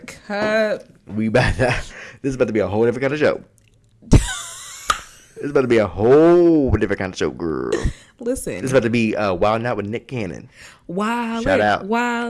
This is about to be a whole different kind of show. It's about to be a whole different kind of show, girl. Listen. It's about to be Wild Out with Nick Cannon. Shout out.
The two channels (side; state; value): both; identical; correlation 1.00